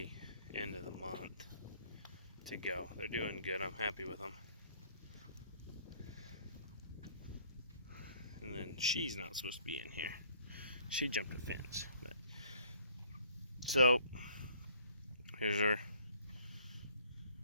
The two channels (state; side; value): inverted; both; correlation -0.58